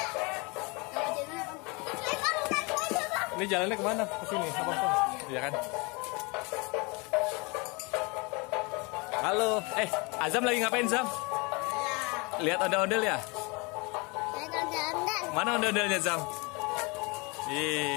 Ini jalannya kemana? Ke sini, apa pun? Iya kan? Halo, Azam lagi ngapain Zam? Lihat ondel-ondel ya? Mana ondel-ondelnya Zam?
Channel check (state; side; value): quieter; right; 28.7 dB